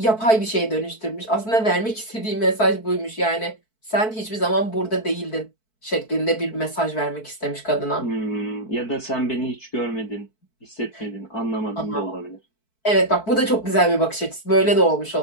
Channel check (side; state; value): right; late; 4.6 ms